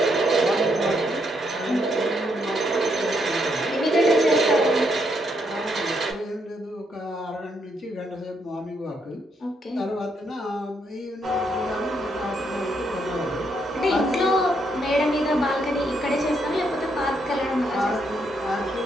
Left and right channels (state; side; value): normal; both; correlation 0.76